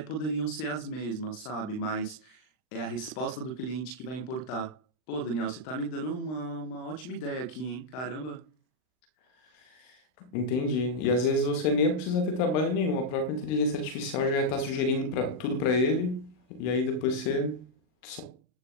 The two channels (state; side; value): late; right; 39 ms